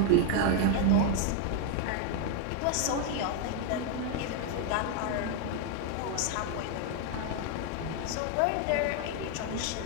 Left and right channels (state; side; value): different; both; correlation 0.01